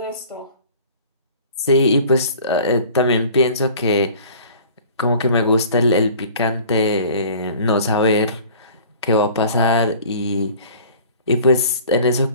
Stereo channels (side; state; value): both; inverted; correlation -0.47